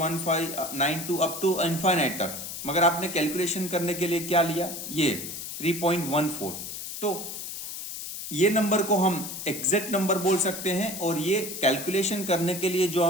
अप टू इनफाइनाइट तक, मगर आपने कैलकुलेशन करने के लिए क्या लिया, ये 3.14। तो ये नंबर को हम एग्जैक्ट नंबर बोल सकते हैं, और ये कैलकुलेशन करने के लिए जो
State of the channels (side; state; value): left; noise; hiss, 8 dB below the sound